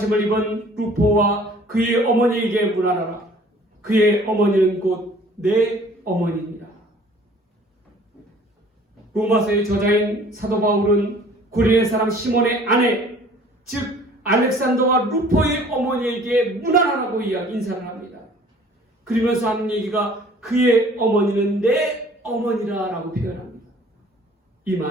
입은 루포와 그의 어머니에게 문안하라. 그의 어머니는 곧 내 어머니니라. 로마서의 저자인 사도 바울은 구린의 사람 시몬의 아내, 즉 알렉산더와 루포의 어머니에게 문안하라고 인사를 합니다. 그러면서 하는 얘기가 그의 어머니는 내 어머니라 라고 표현합니다. 이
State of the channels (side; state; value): both; normal; correlation 0.52